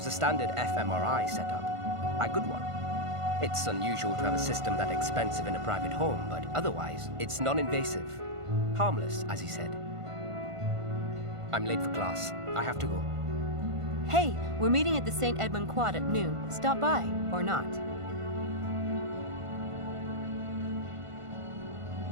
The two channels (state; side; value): late; left; 1.5 ms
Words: a standard fMRI setup. A good one. It's unusual to have a system that expensive in a private home, but otherwise, it's non-invasive. Harmless, as he said. I'm late for class. I have to go. Hey, we're meeting at the St. Edmund Quad at noon. Stop by, or not.